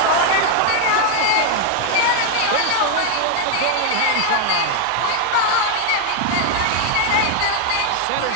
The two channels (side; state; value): both; different; correlation 0.01